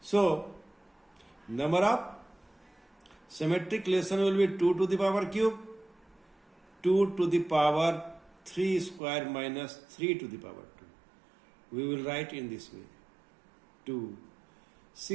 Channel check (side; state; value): left; drops out; at 9.0 s